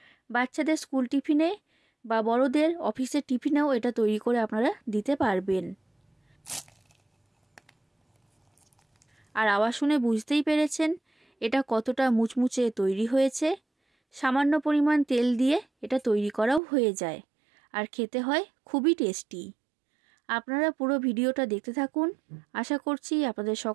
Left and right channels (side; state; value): left; drops out; at 16.6 s